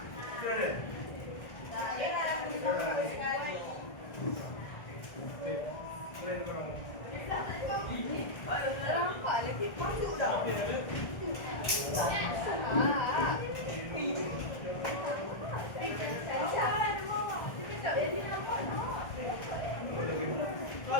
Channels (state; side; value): late; right; 1.5 ms